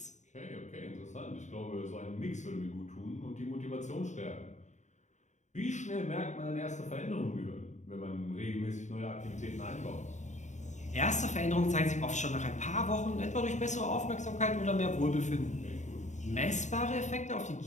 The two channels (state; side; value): late; right; 0.34 ms